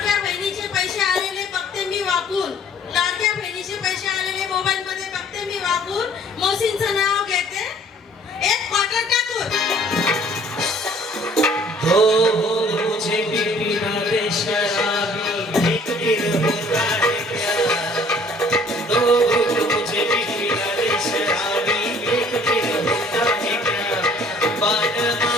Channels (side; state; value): both; normal; correlation 0.56